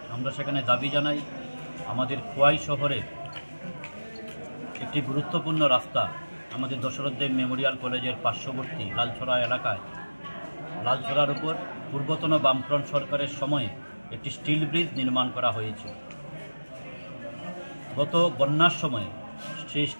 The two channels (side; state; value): both; inverted; correlation -1.00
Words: আমরা সেখানে দাবি জানাই আমাদের খোয়াই শহরে একটি গুরুত্বপূর্ণ রাস্তা, আমাদের দশরথ দেব মেমোরিয়াল কলেজের পার্শ্ববর্তী লালছড়া এলাকায়, লালছড়ার উপর পূর্বতন বামফ্রন্ট সরকারের সময়ে একটি স্টিল ব্রিজ নির্মাণ করা হয়েছিল। গত বন্যার সময়ে সেই